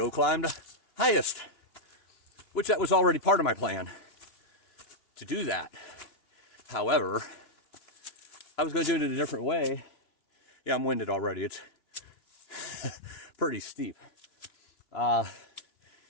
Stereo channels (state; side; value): late; right; 3.0 ms